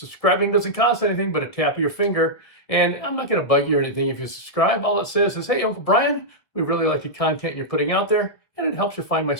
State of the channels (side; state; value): right; late; 1.5 ms